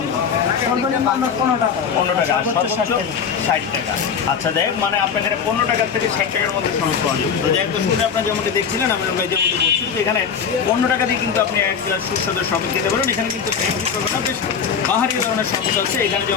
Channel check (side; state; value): right; quieter; 6.8 dB